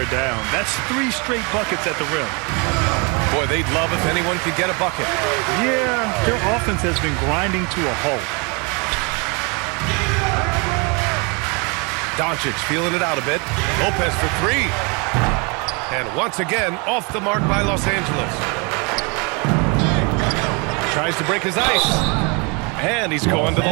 down. That's 3 straight buckets at the rim. Boy, they'd love if anyone could get a bucket. Yeah, their offense has been grinding to a halt. Doncic feeling it out a bit. Lopez for 3. And once again, off the mark by Los Angeles. Tries to break his ice. And he's going to the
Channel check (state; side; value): quieter; left; 31.4 dB